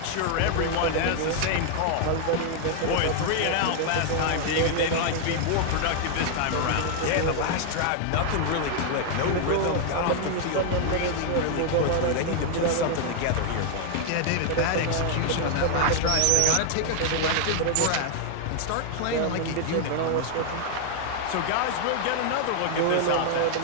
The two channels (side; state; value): both; different; correlation 0.00